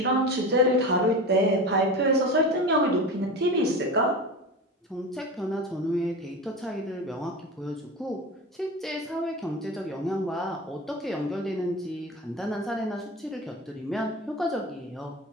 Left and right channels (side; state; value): both; normal; correlation 0.28